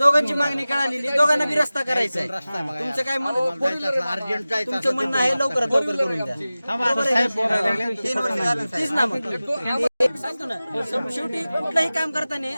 मागणी कळालेली, दोघांना बी रस्ता करायचा आहे. तुमचं काय तुमचं म्हणणं आहे लवकरात लवकर करून द्या. तेच ना मग सांगतो ना. शेवटी कुठलंही काम करताना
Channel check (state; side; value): inverted; both; correlation -0.97